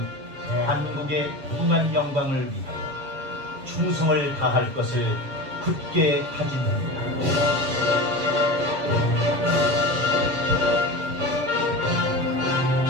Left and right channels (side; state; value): left; late; 7.5 ms